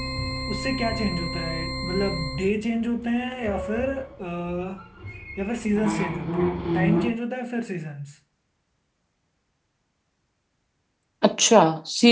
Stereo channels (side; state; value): both; identical; correlation 1.00